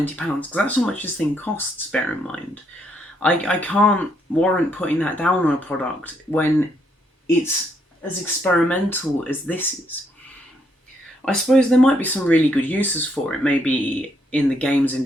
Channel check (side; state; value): both; normal; correlation 0.74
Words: because that's how much this thing costs, bear in mind. I can't warrant putting that down on a product when it's as experimental as this is. I suppose there might be some really good uses for it, maybe in the games